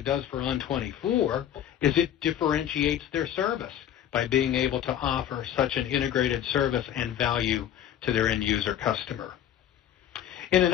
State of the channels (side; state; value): right; quieter; 10.6 dB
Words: does for On24, is it differentiates their service by being able to offer such an integrated service and value to their end user customer. In